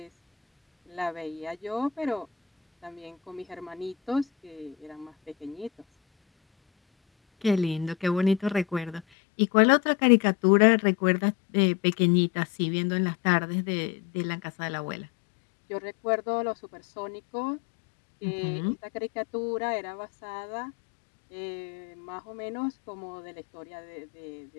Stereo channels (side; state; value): right; drops out; at 9.0 s